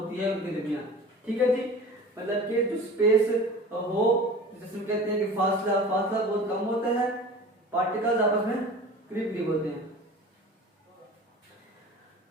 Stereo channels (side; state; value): both; normal; correlation 0.39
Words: है उनके दरमियान। ठीक है जी, मतलब कि जो स्पेस हो, जिसमें कहते हैं कि फासला बहुत कम होता है, पार्टिकल्स आपस में करीब करीब होते हैं।